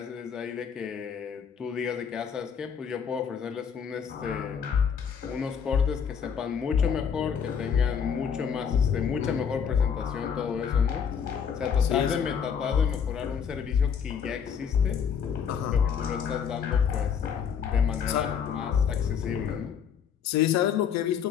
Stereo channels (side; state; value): right; quieter; 7.3 dB